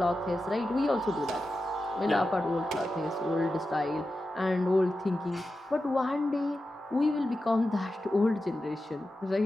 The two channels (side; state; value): both; normal; correlation 0.92